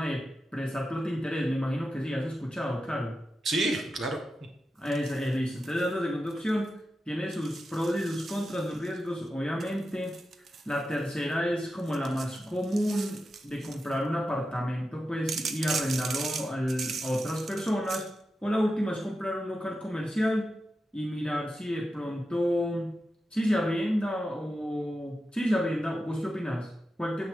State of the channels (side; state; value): both; normal; correlation 0.90